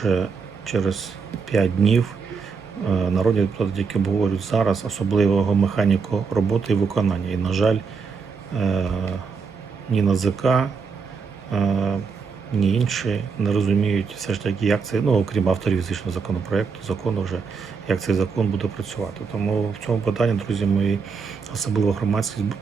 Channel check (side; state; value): left; quieter; 5.3 dB